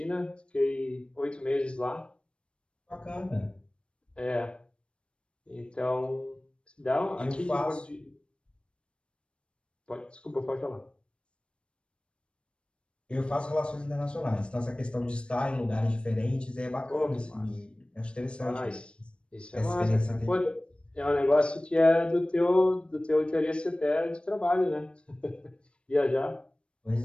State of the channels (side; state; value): right; late; 0.057 ms